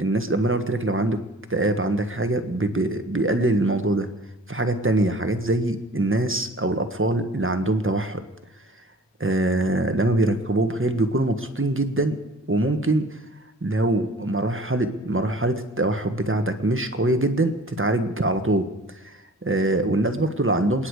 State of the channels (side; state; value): both; normal; correlation 0.47